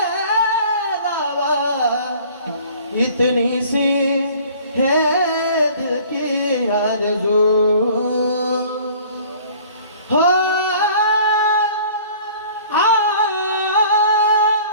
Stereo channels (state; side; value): inverted; both; correlation -0.50